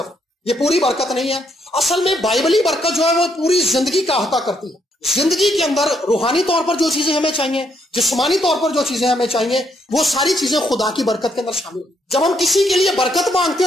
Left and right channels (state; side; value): normal; both; correlation 0.74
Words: یہ پوری برکت نہیں ہے۔ اصل میں بائبلی برکت جو ہے وہ پوری زندگی کا احاطہ کرتی ہے۔ زندگی کے اندر روحانی طور پر جو چیزیں ہمیں چاہیے، جسمانی طور پر جو چیزیں ہمیں چاہیے، وہ ساری چیزیں خدا کی برکت کے اندر شامل ہیں۔ جب ہم کسی کے لیے برکت مانگتے